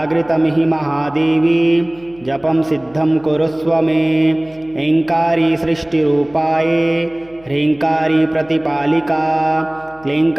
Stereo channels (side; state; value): left; noise; hum, 26 dB below the sound